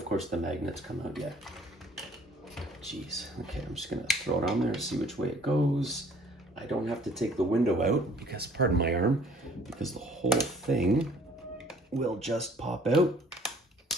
course, the magnets come out yet. Jeez. Okay, I'm just going to throw it on there and see which way it goes. I don't have to take the window out because, pardon my arm, because the whole thing will just pop out.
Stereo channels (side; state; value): both; normal; correlation 0.55